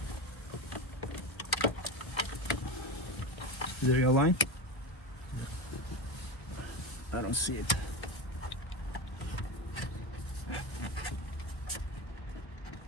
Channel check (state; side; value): late; right; 1.2 ms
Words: Is it aligned? I don't see it.